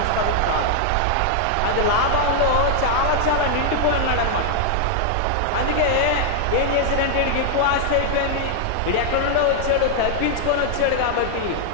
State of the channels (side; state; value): both; different; correlation -0.01